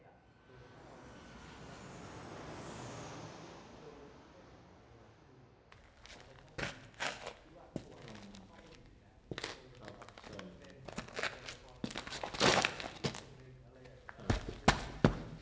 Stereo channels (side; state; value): both; identical; correlation 1.00